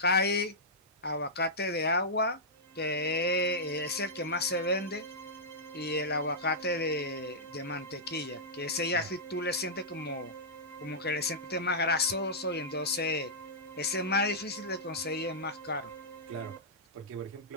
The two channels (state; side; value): normal; both; correlation -0.12